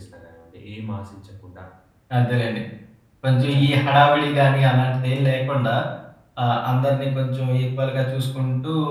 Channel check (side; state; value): both; identical; correlation 1.00